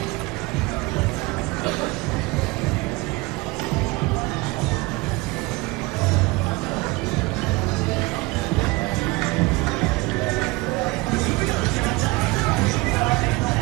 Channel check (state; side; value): quieter; left; 23.4 dB